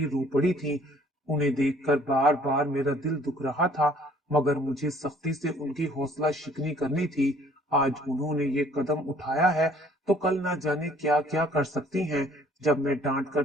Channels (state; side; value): normal; both; correlation 0.57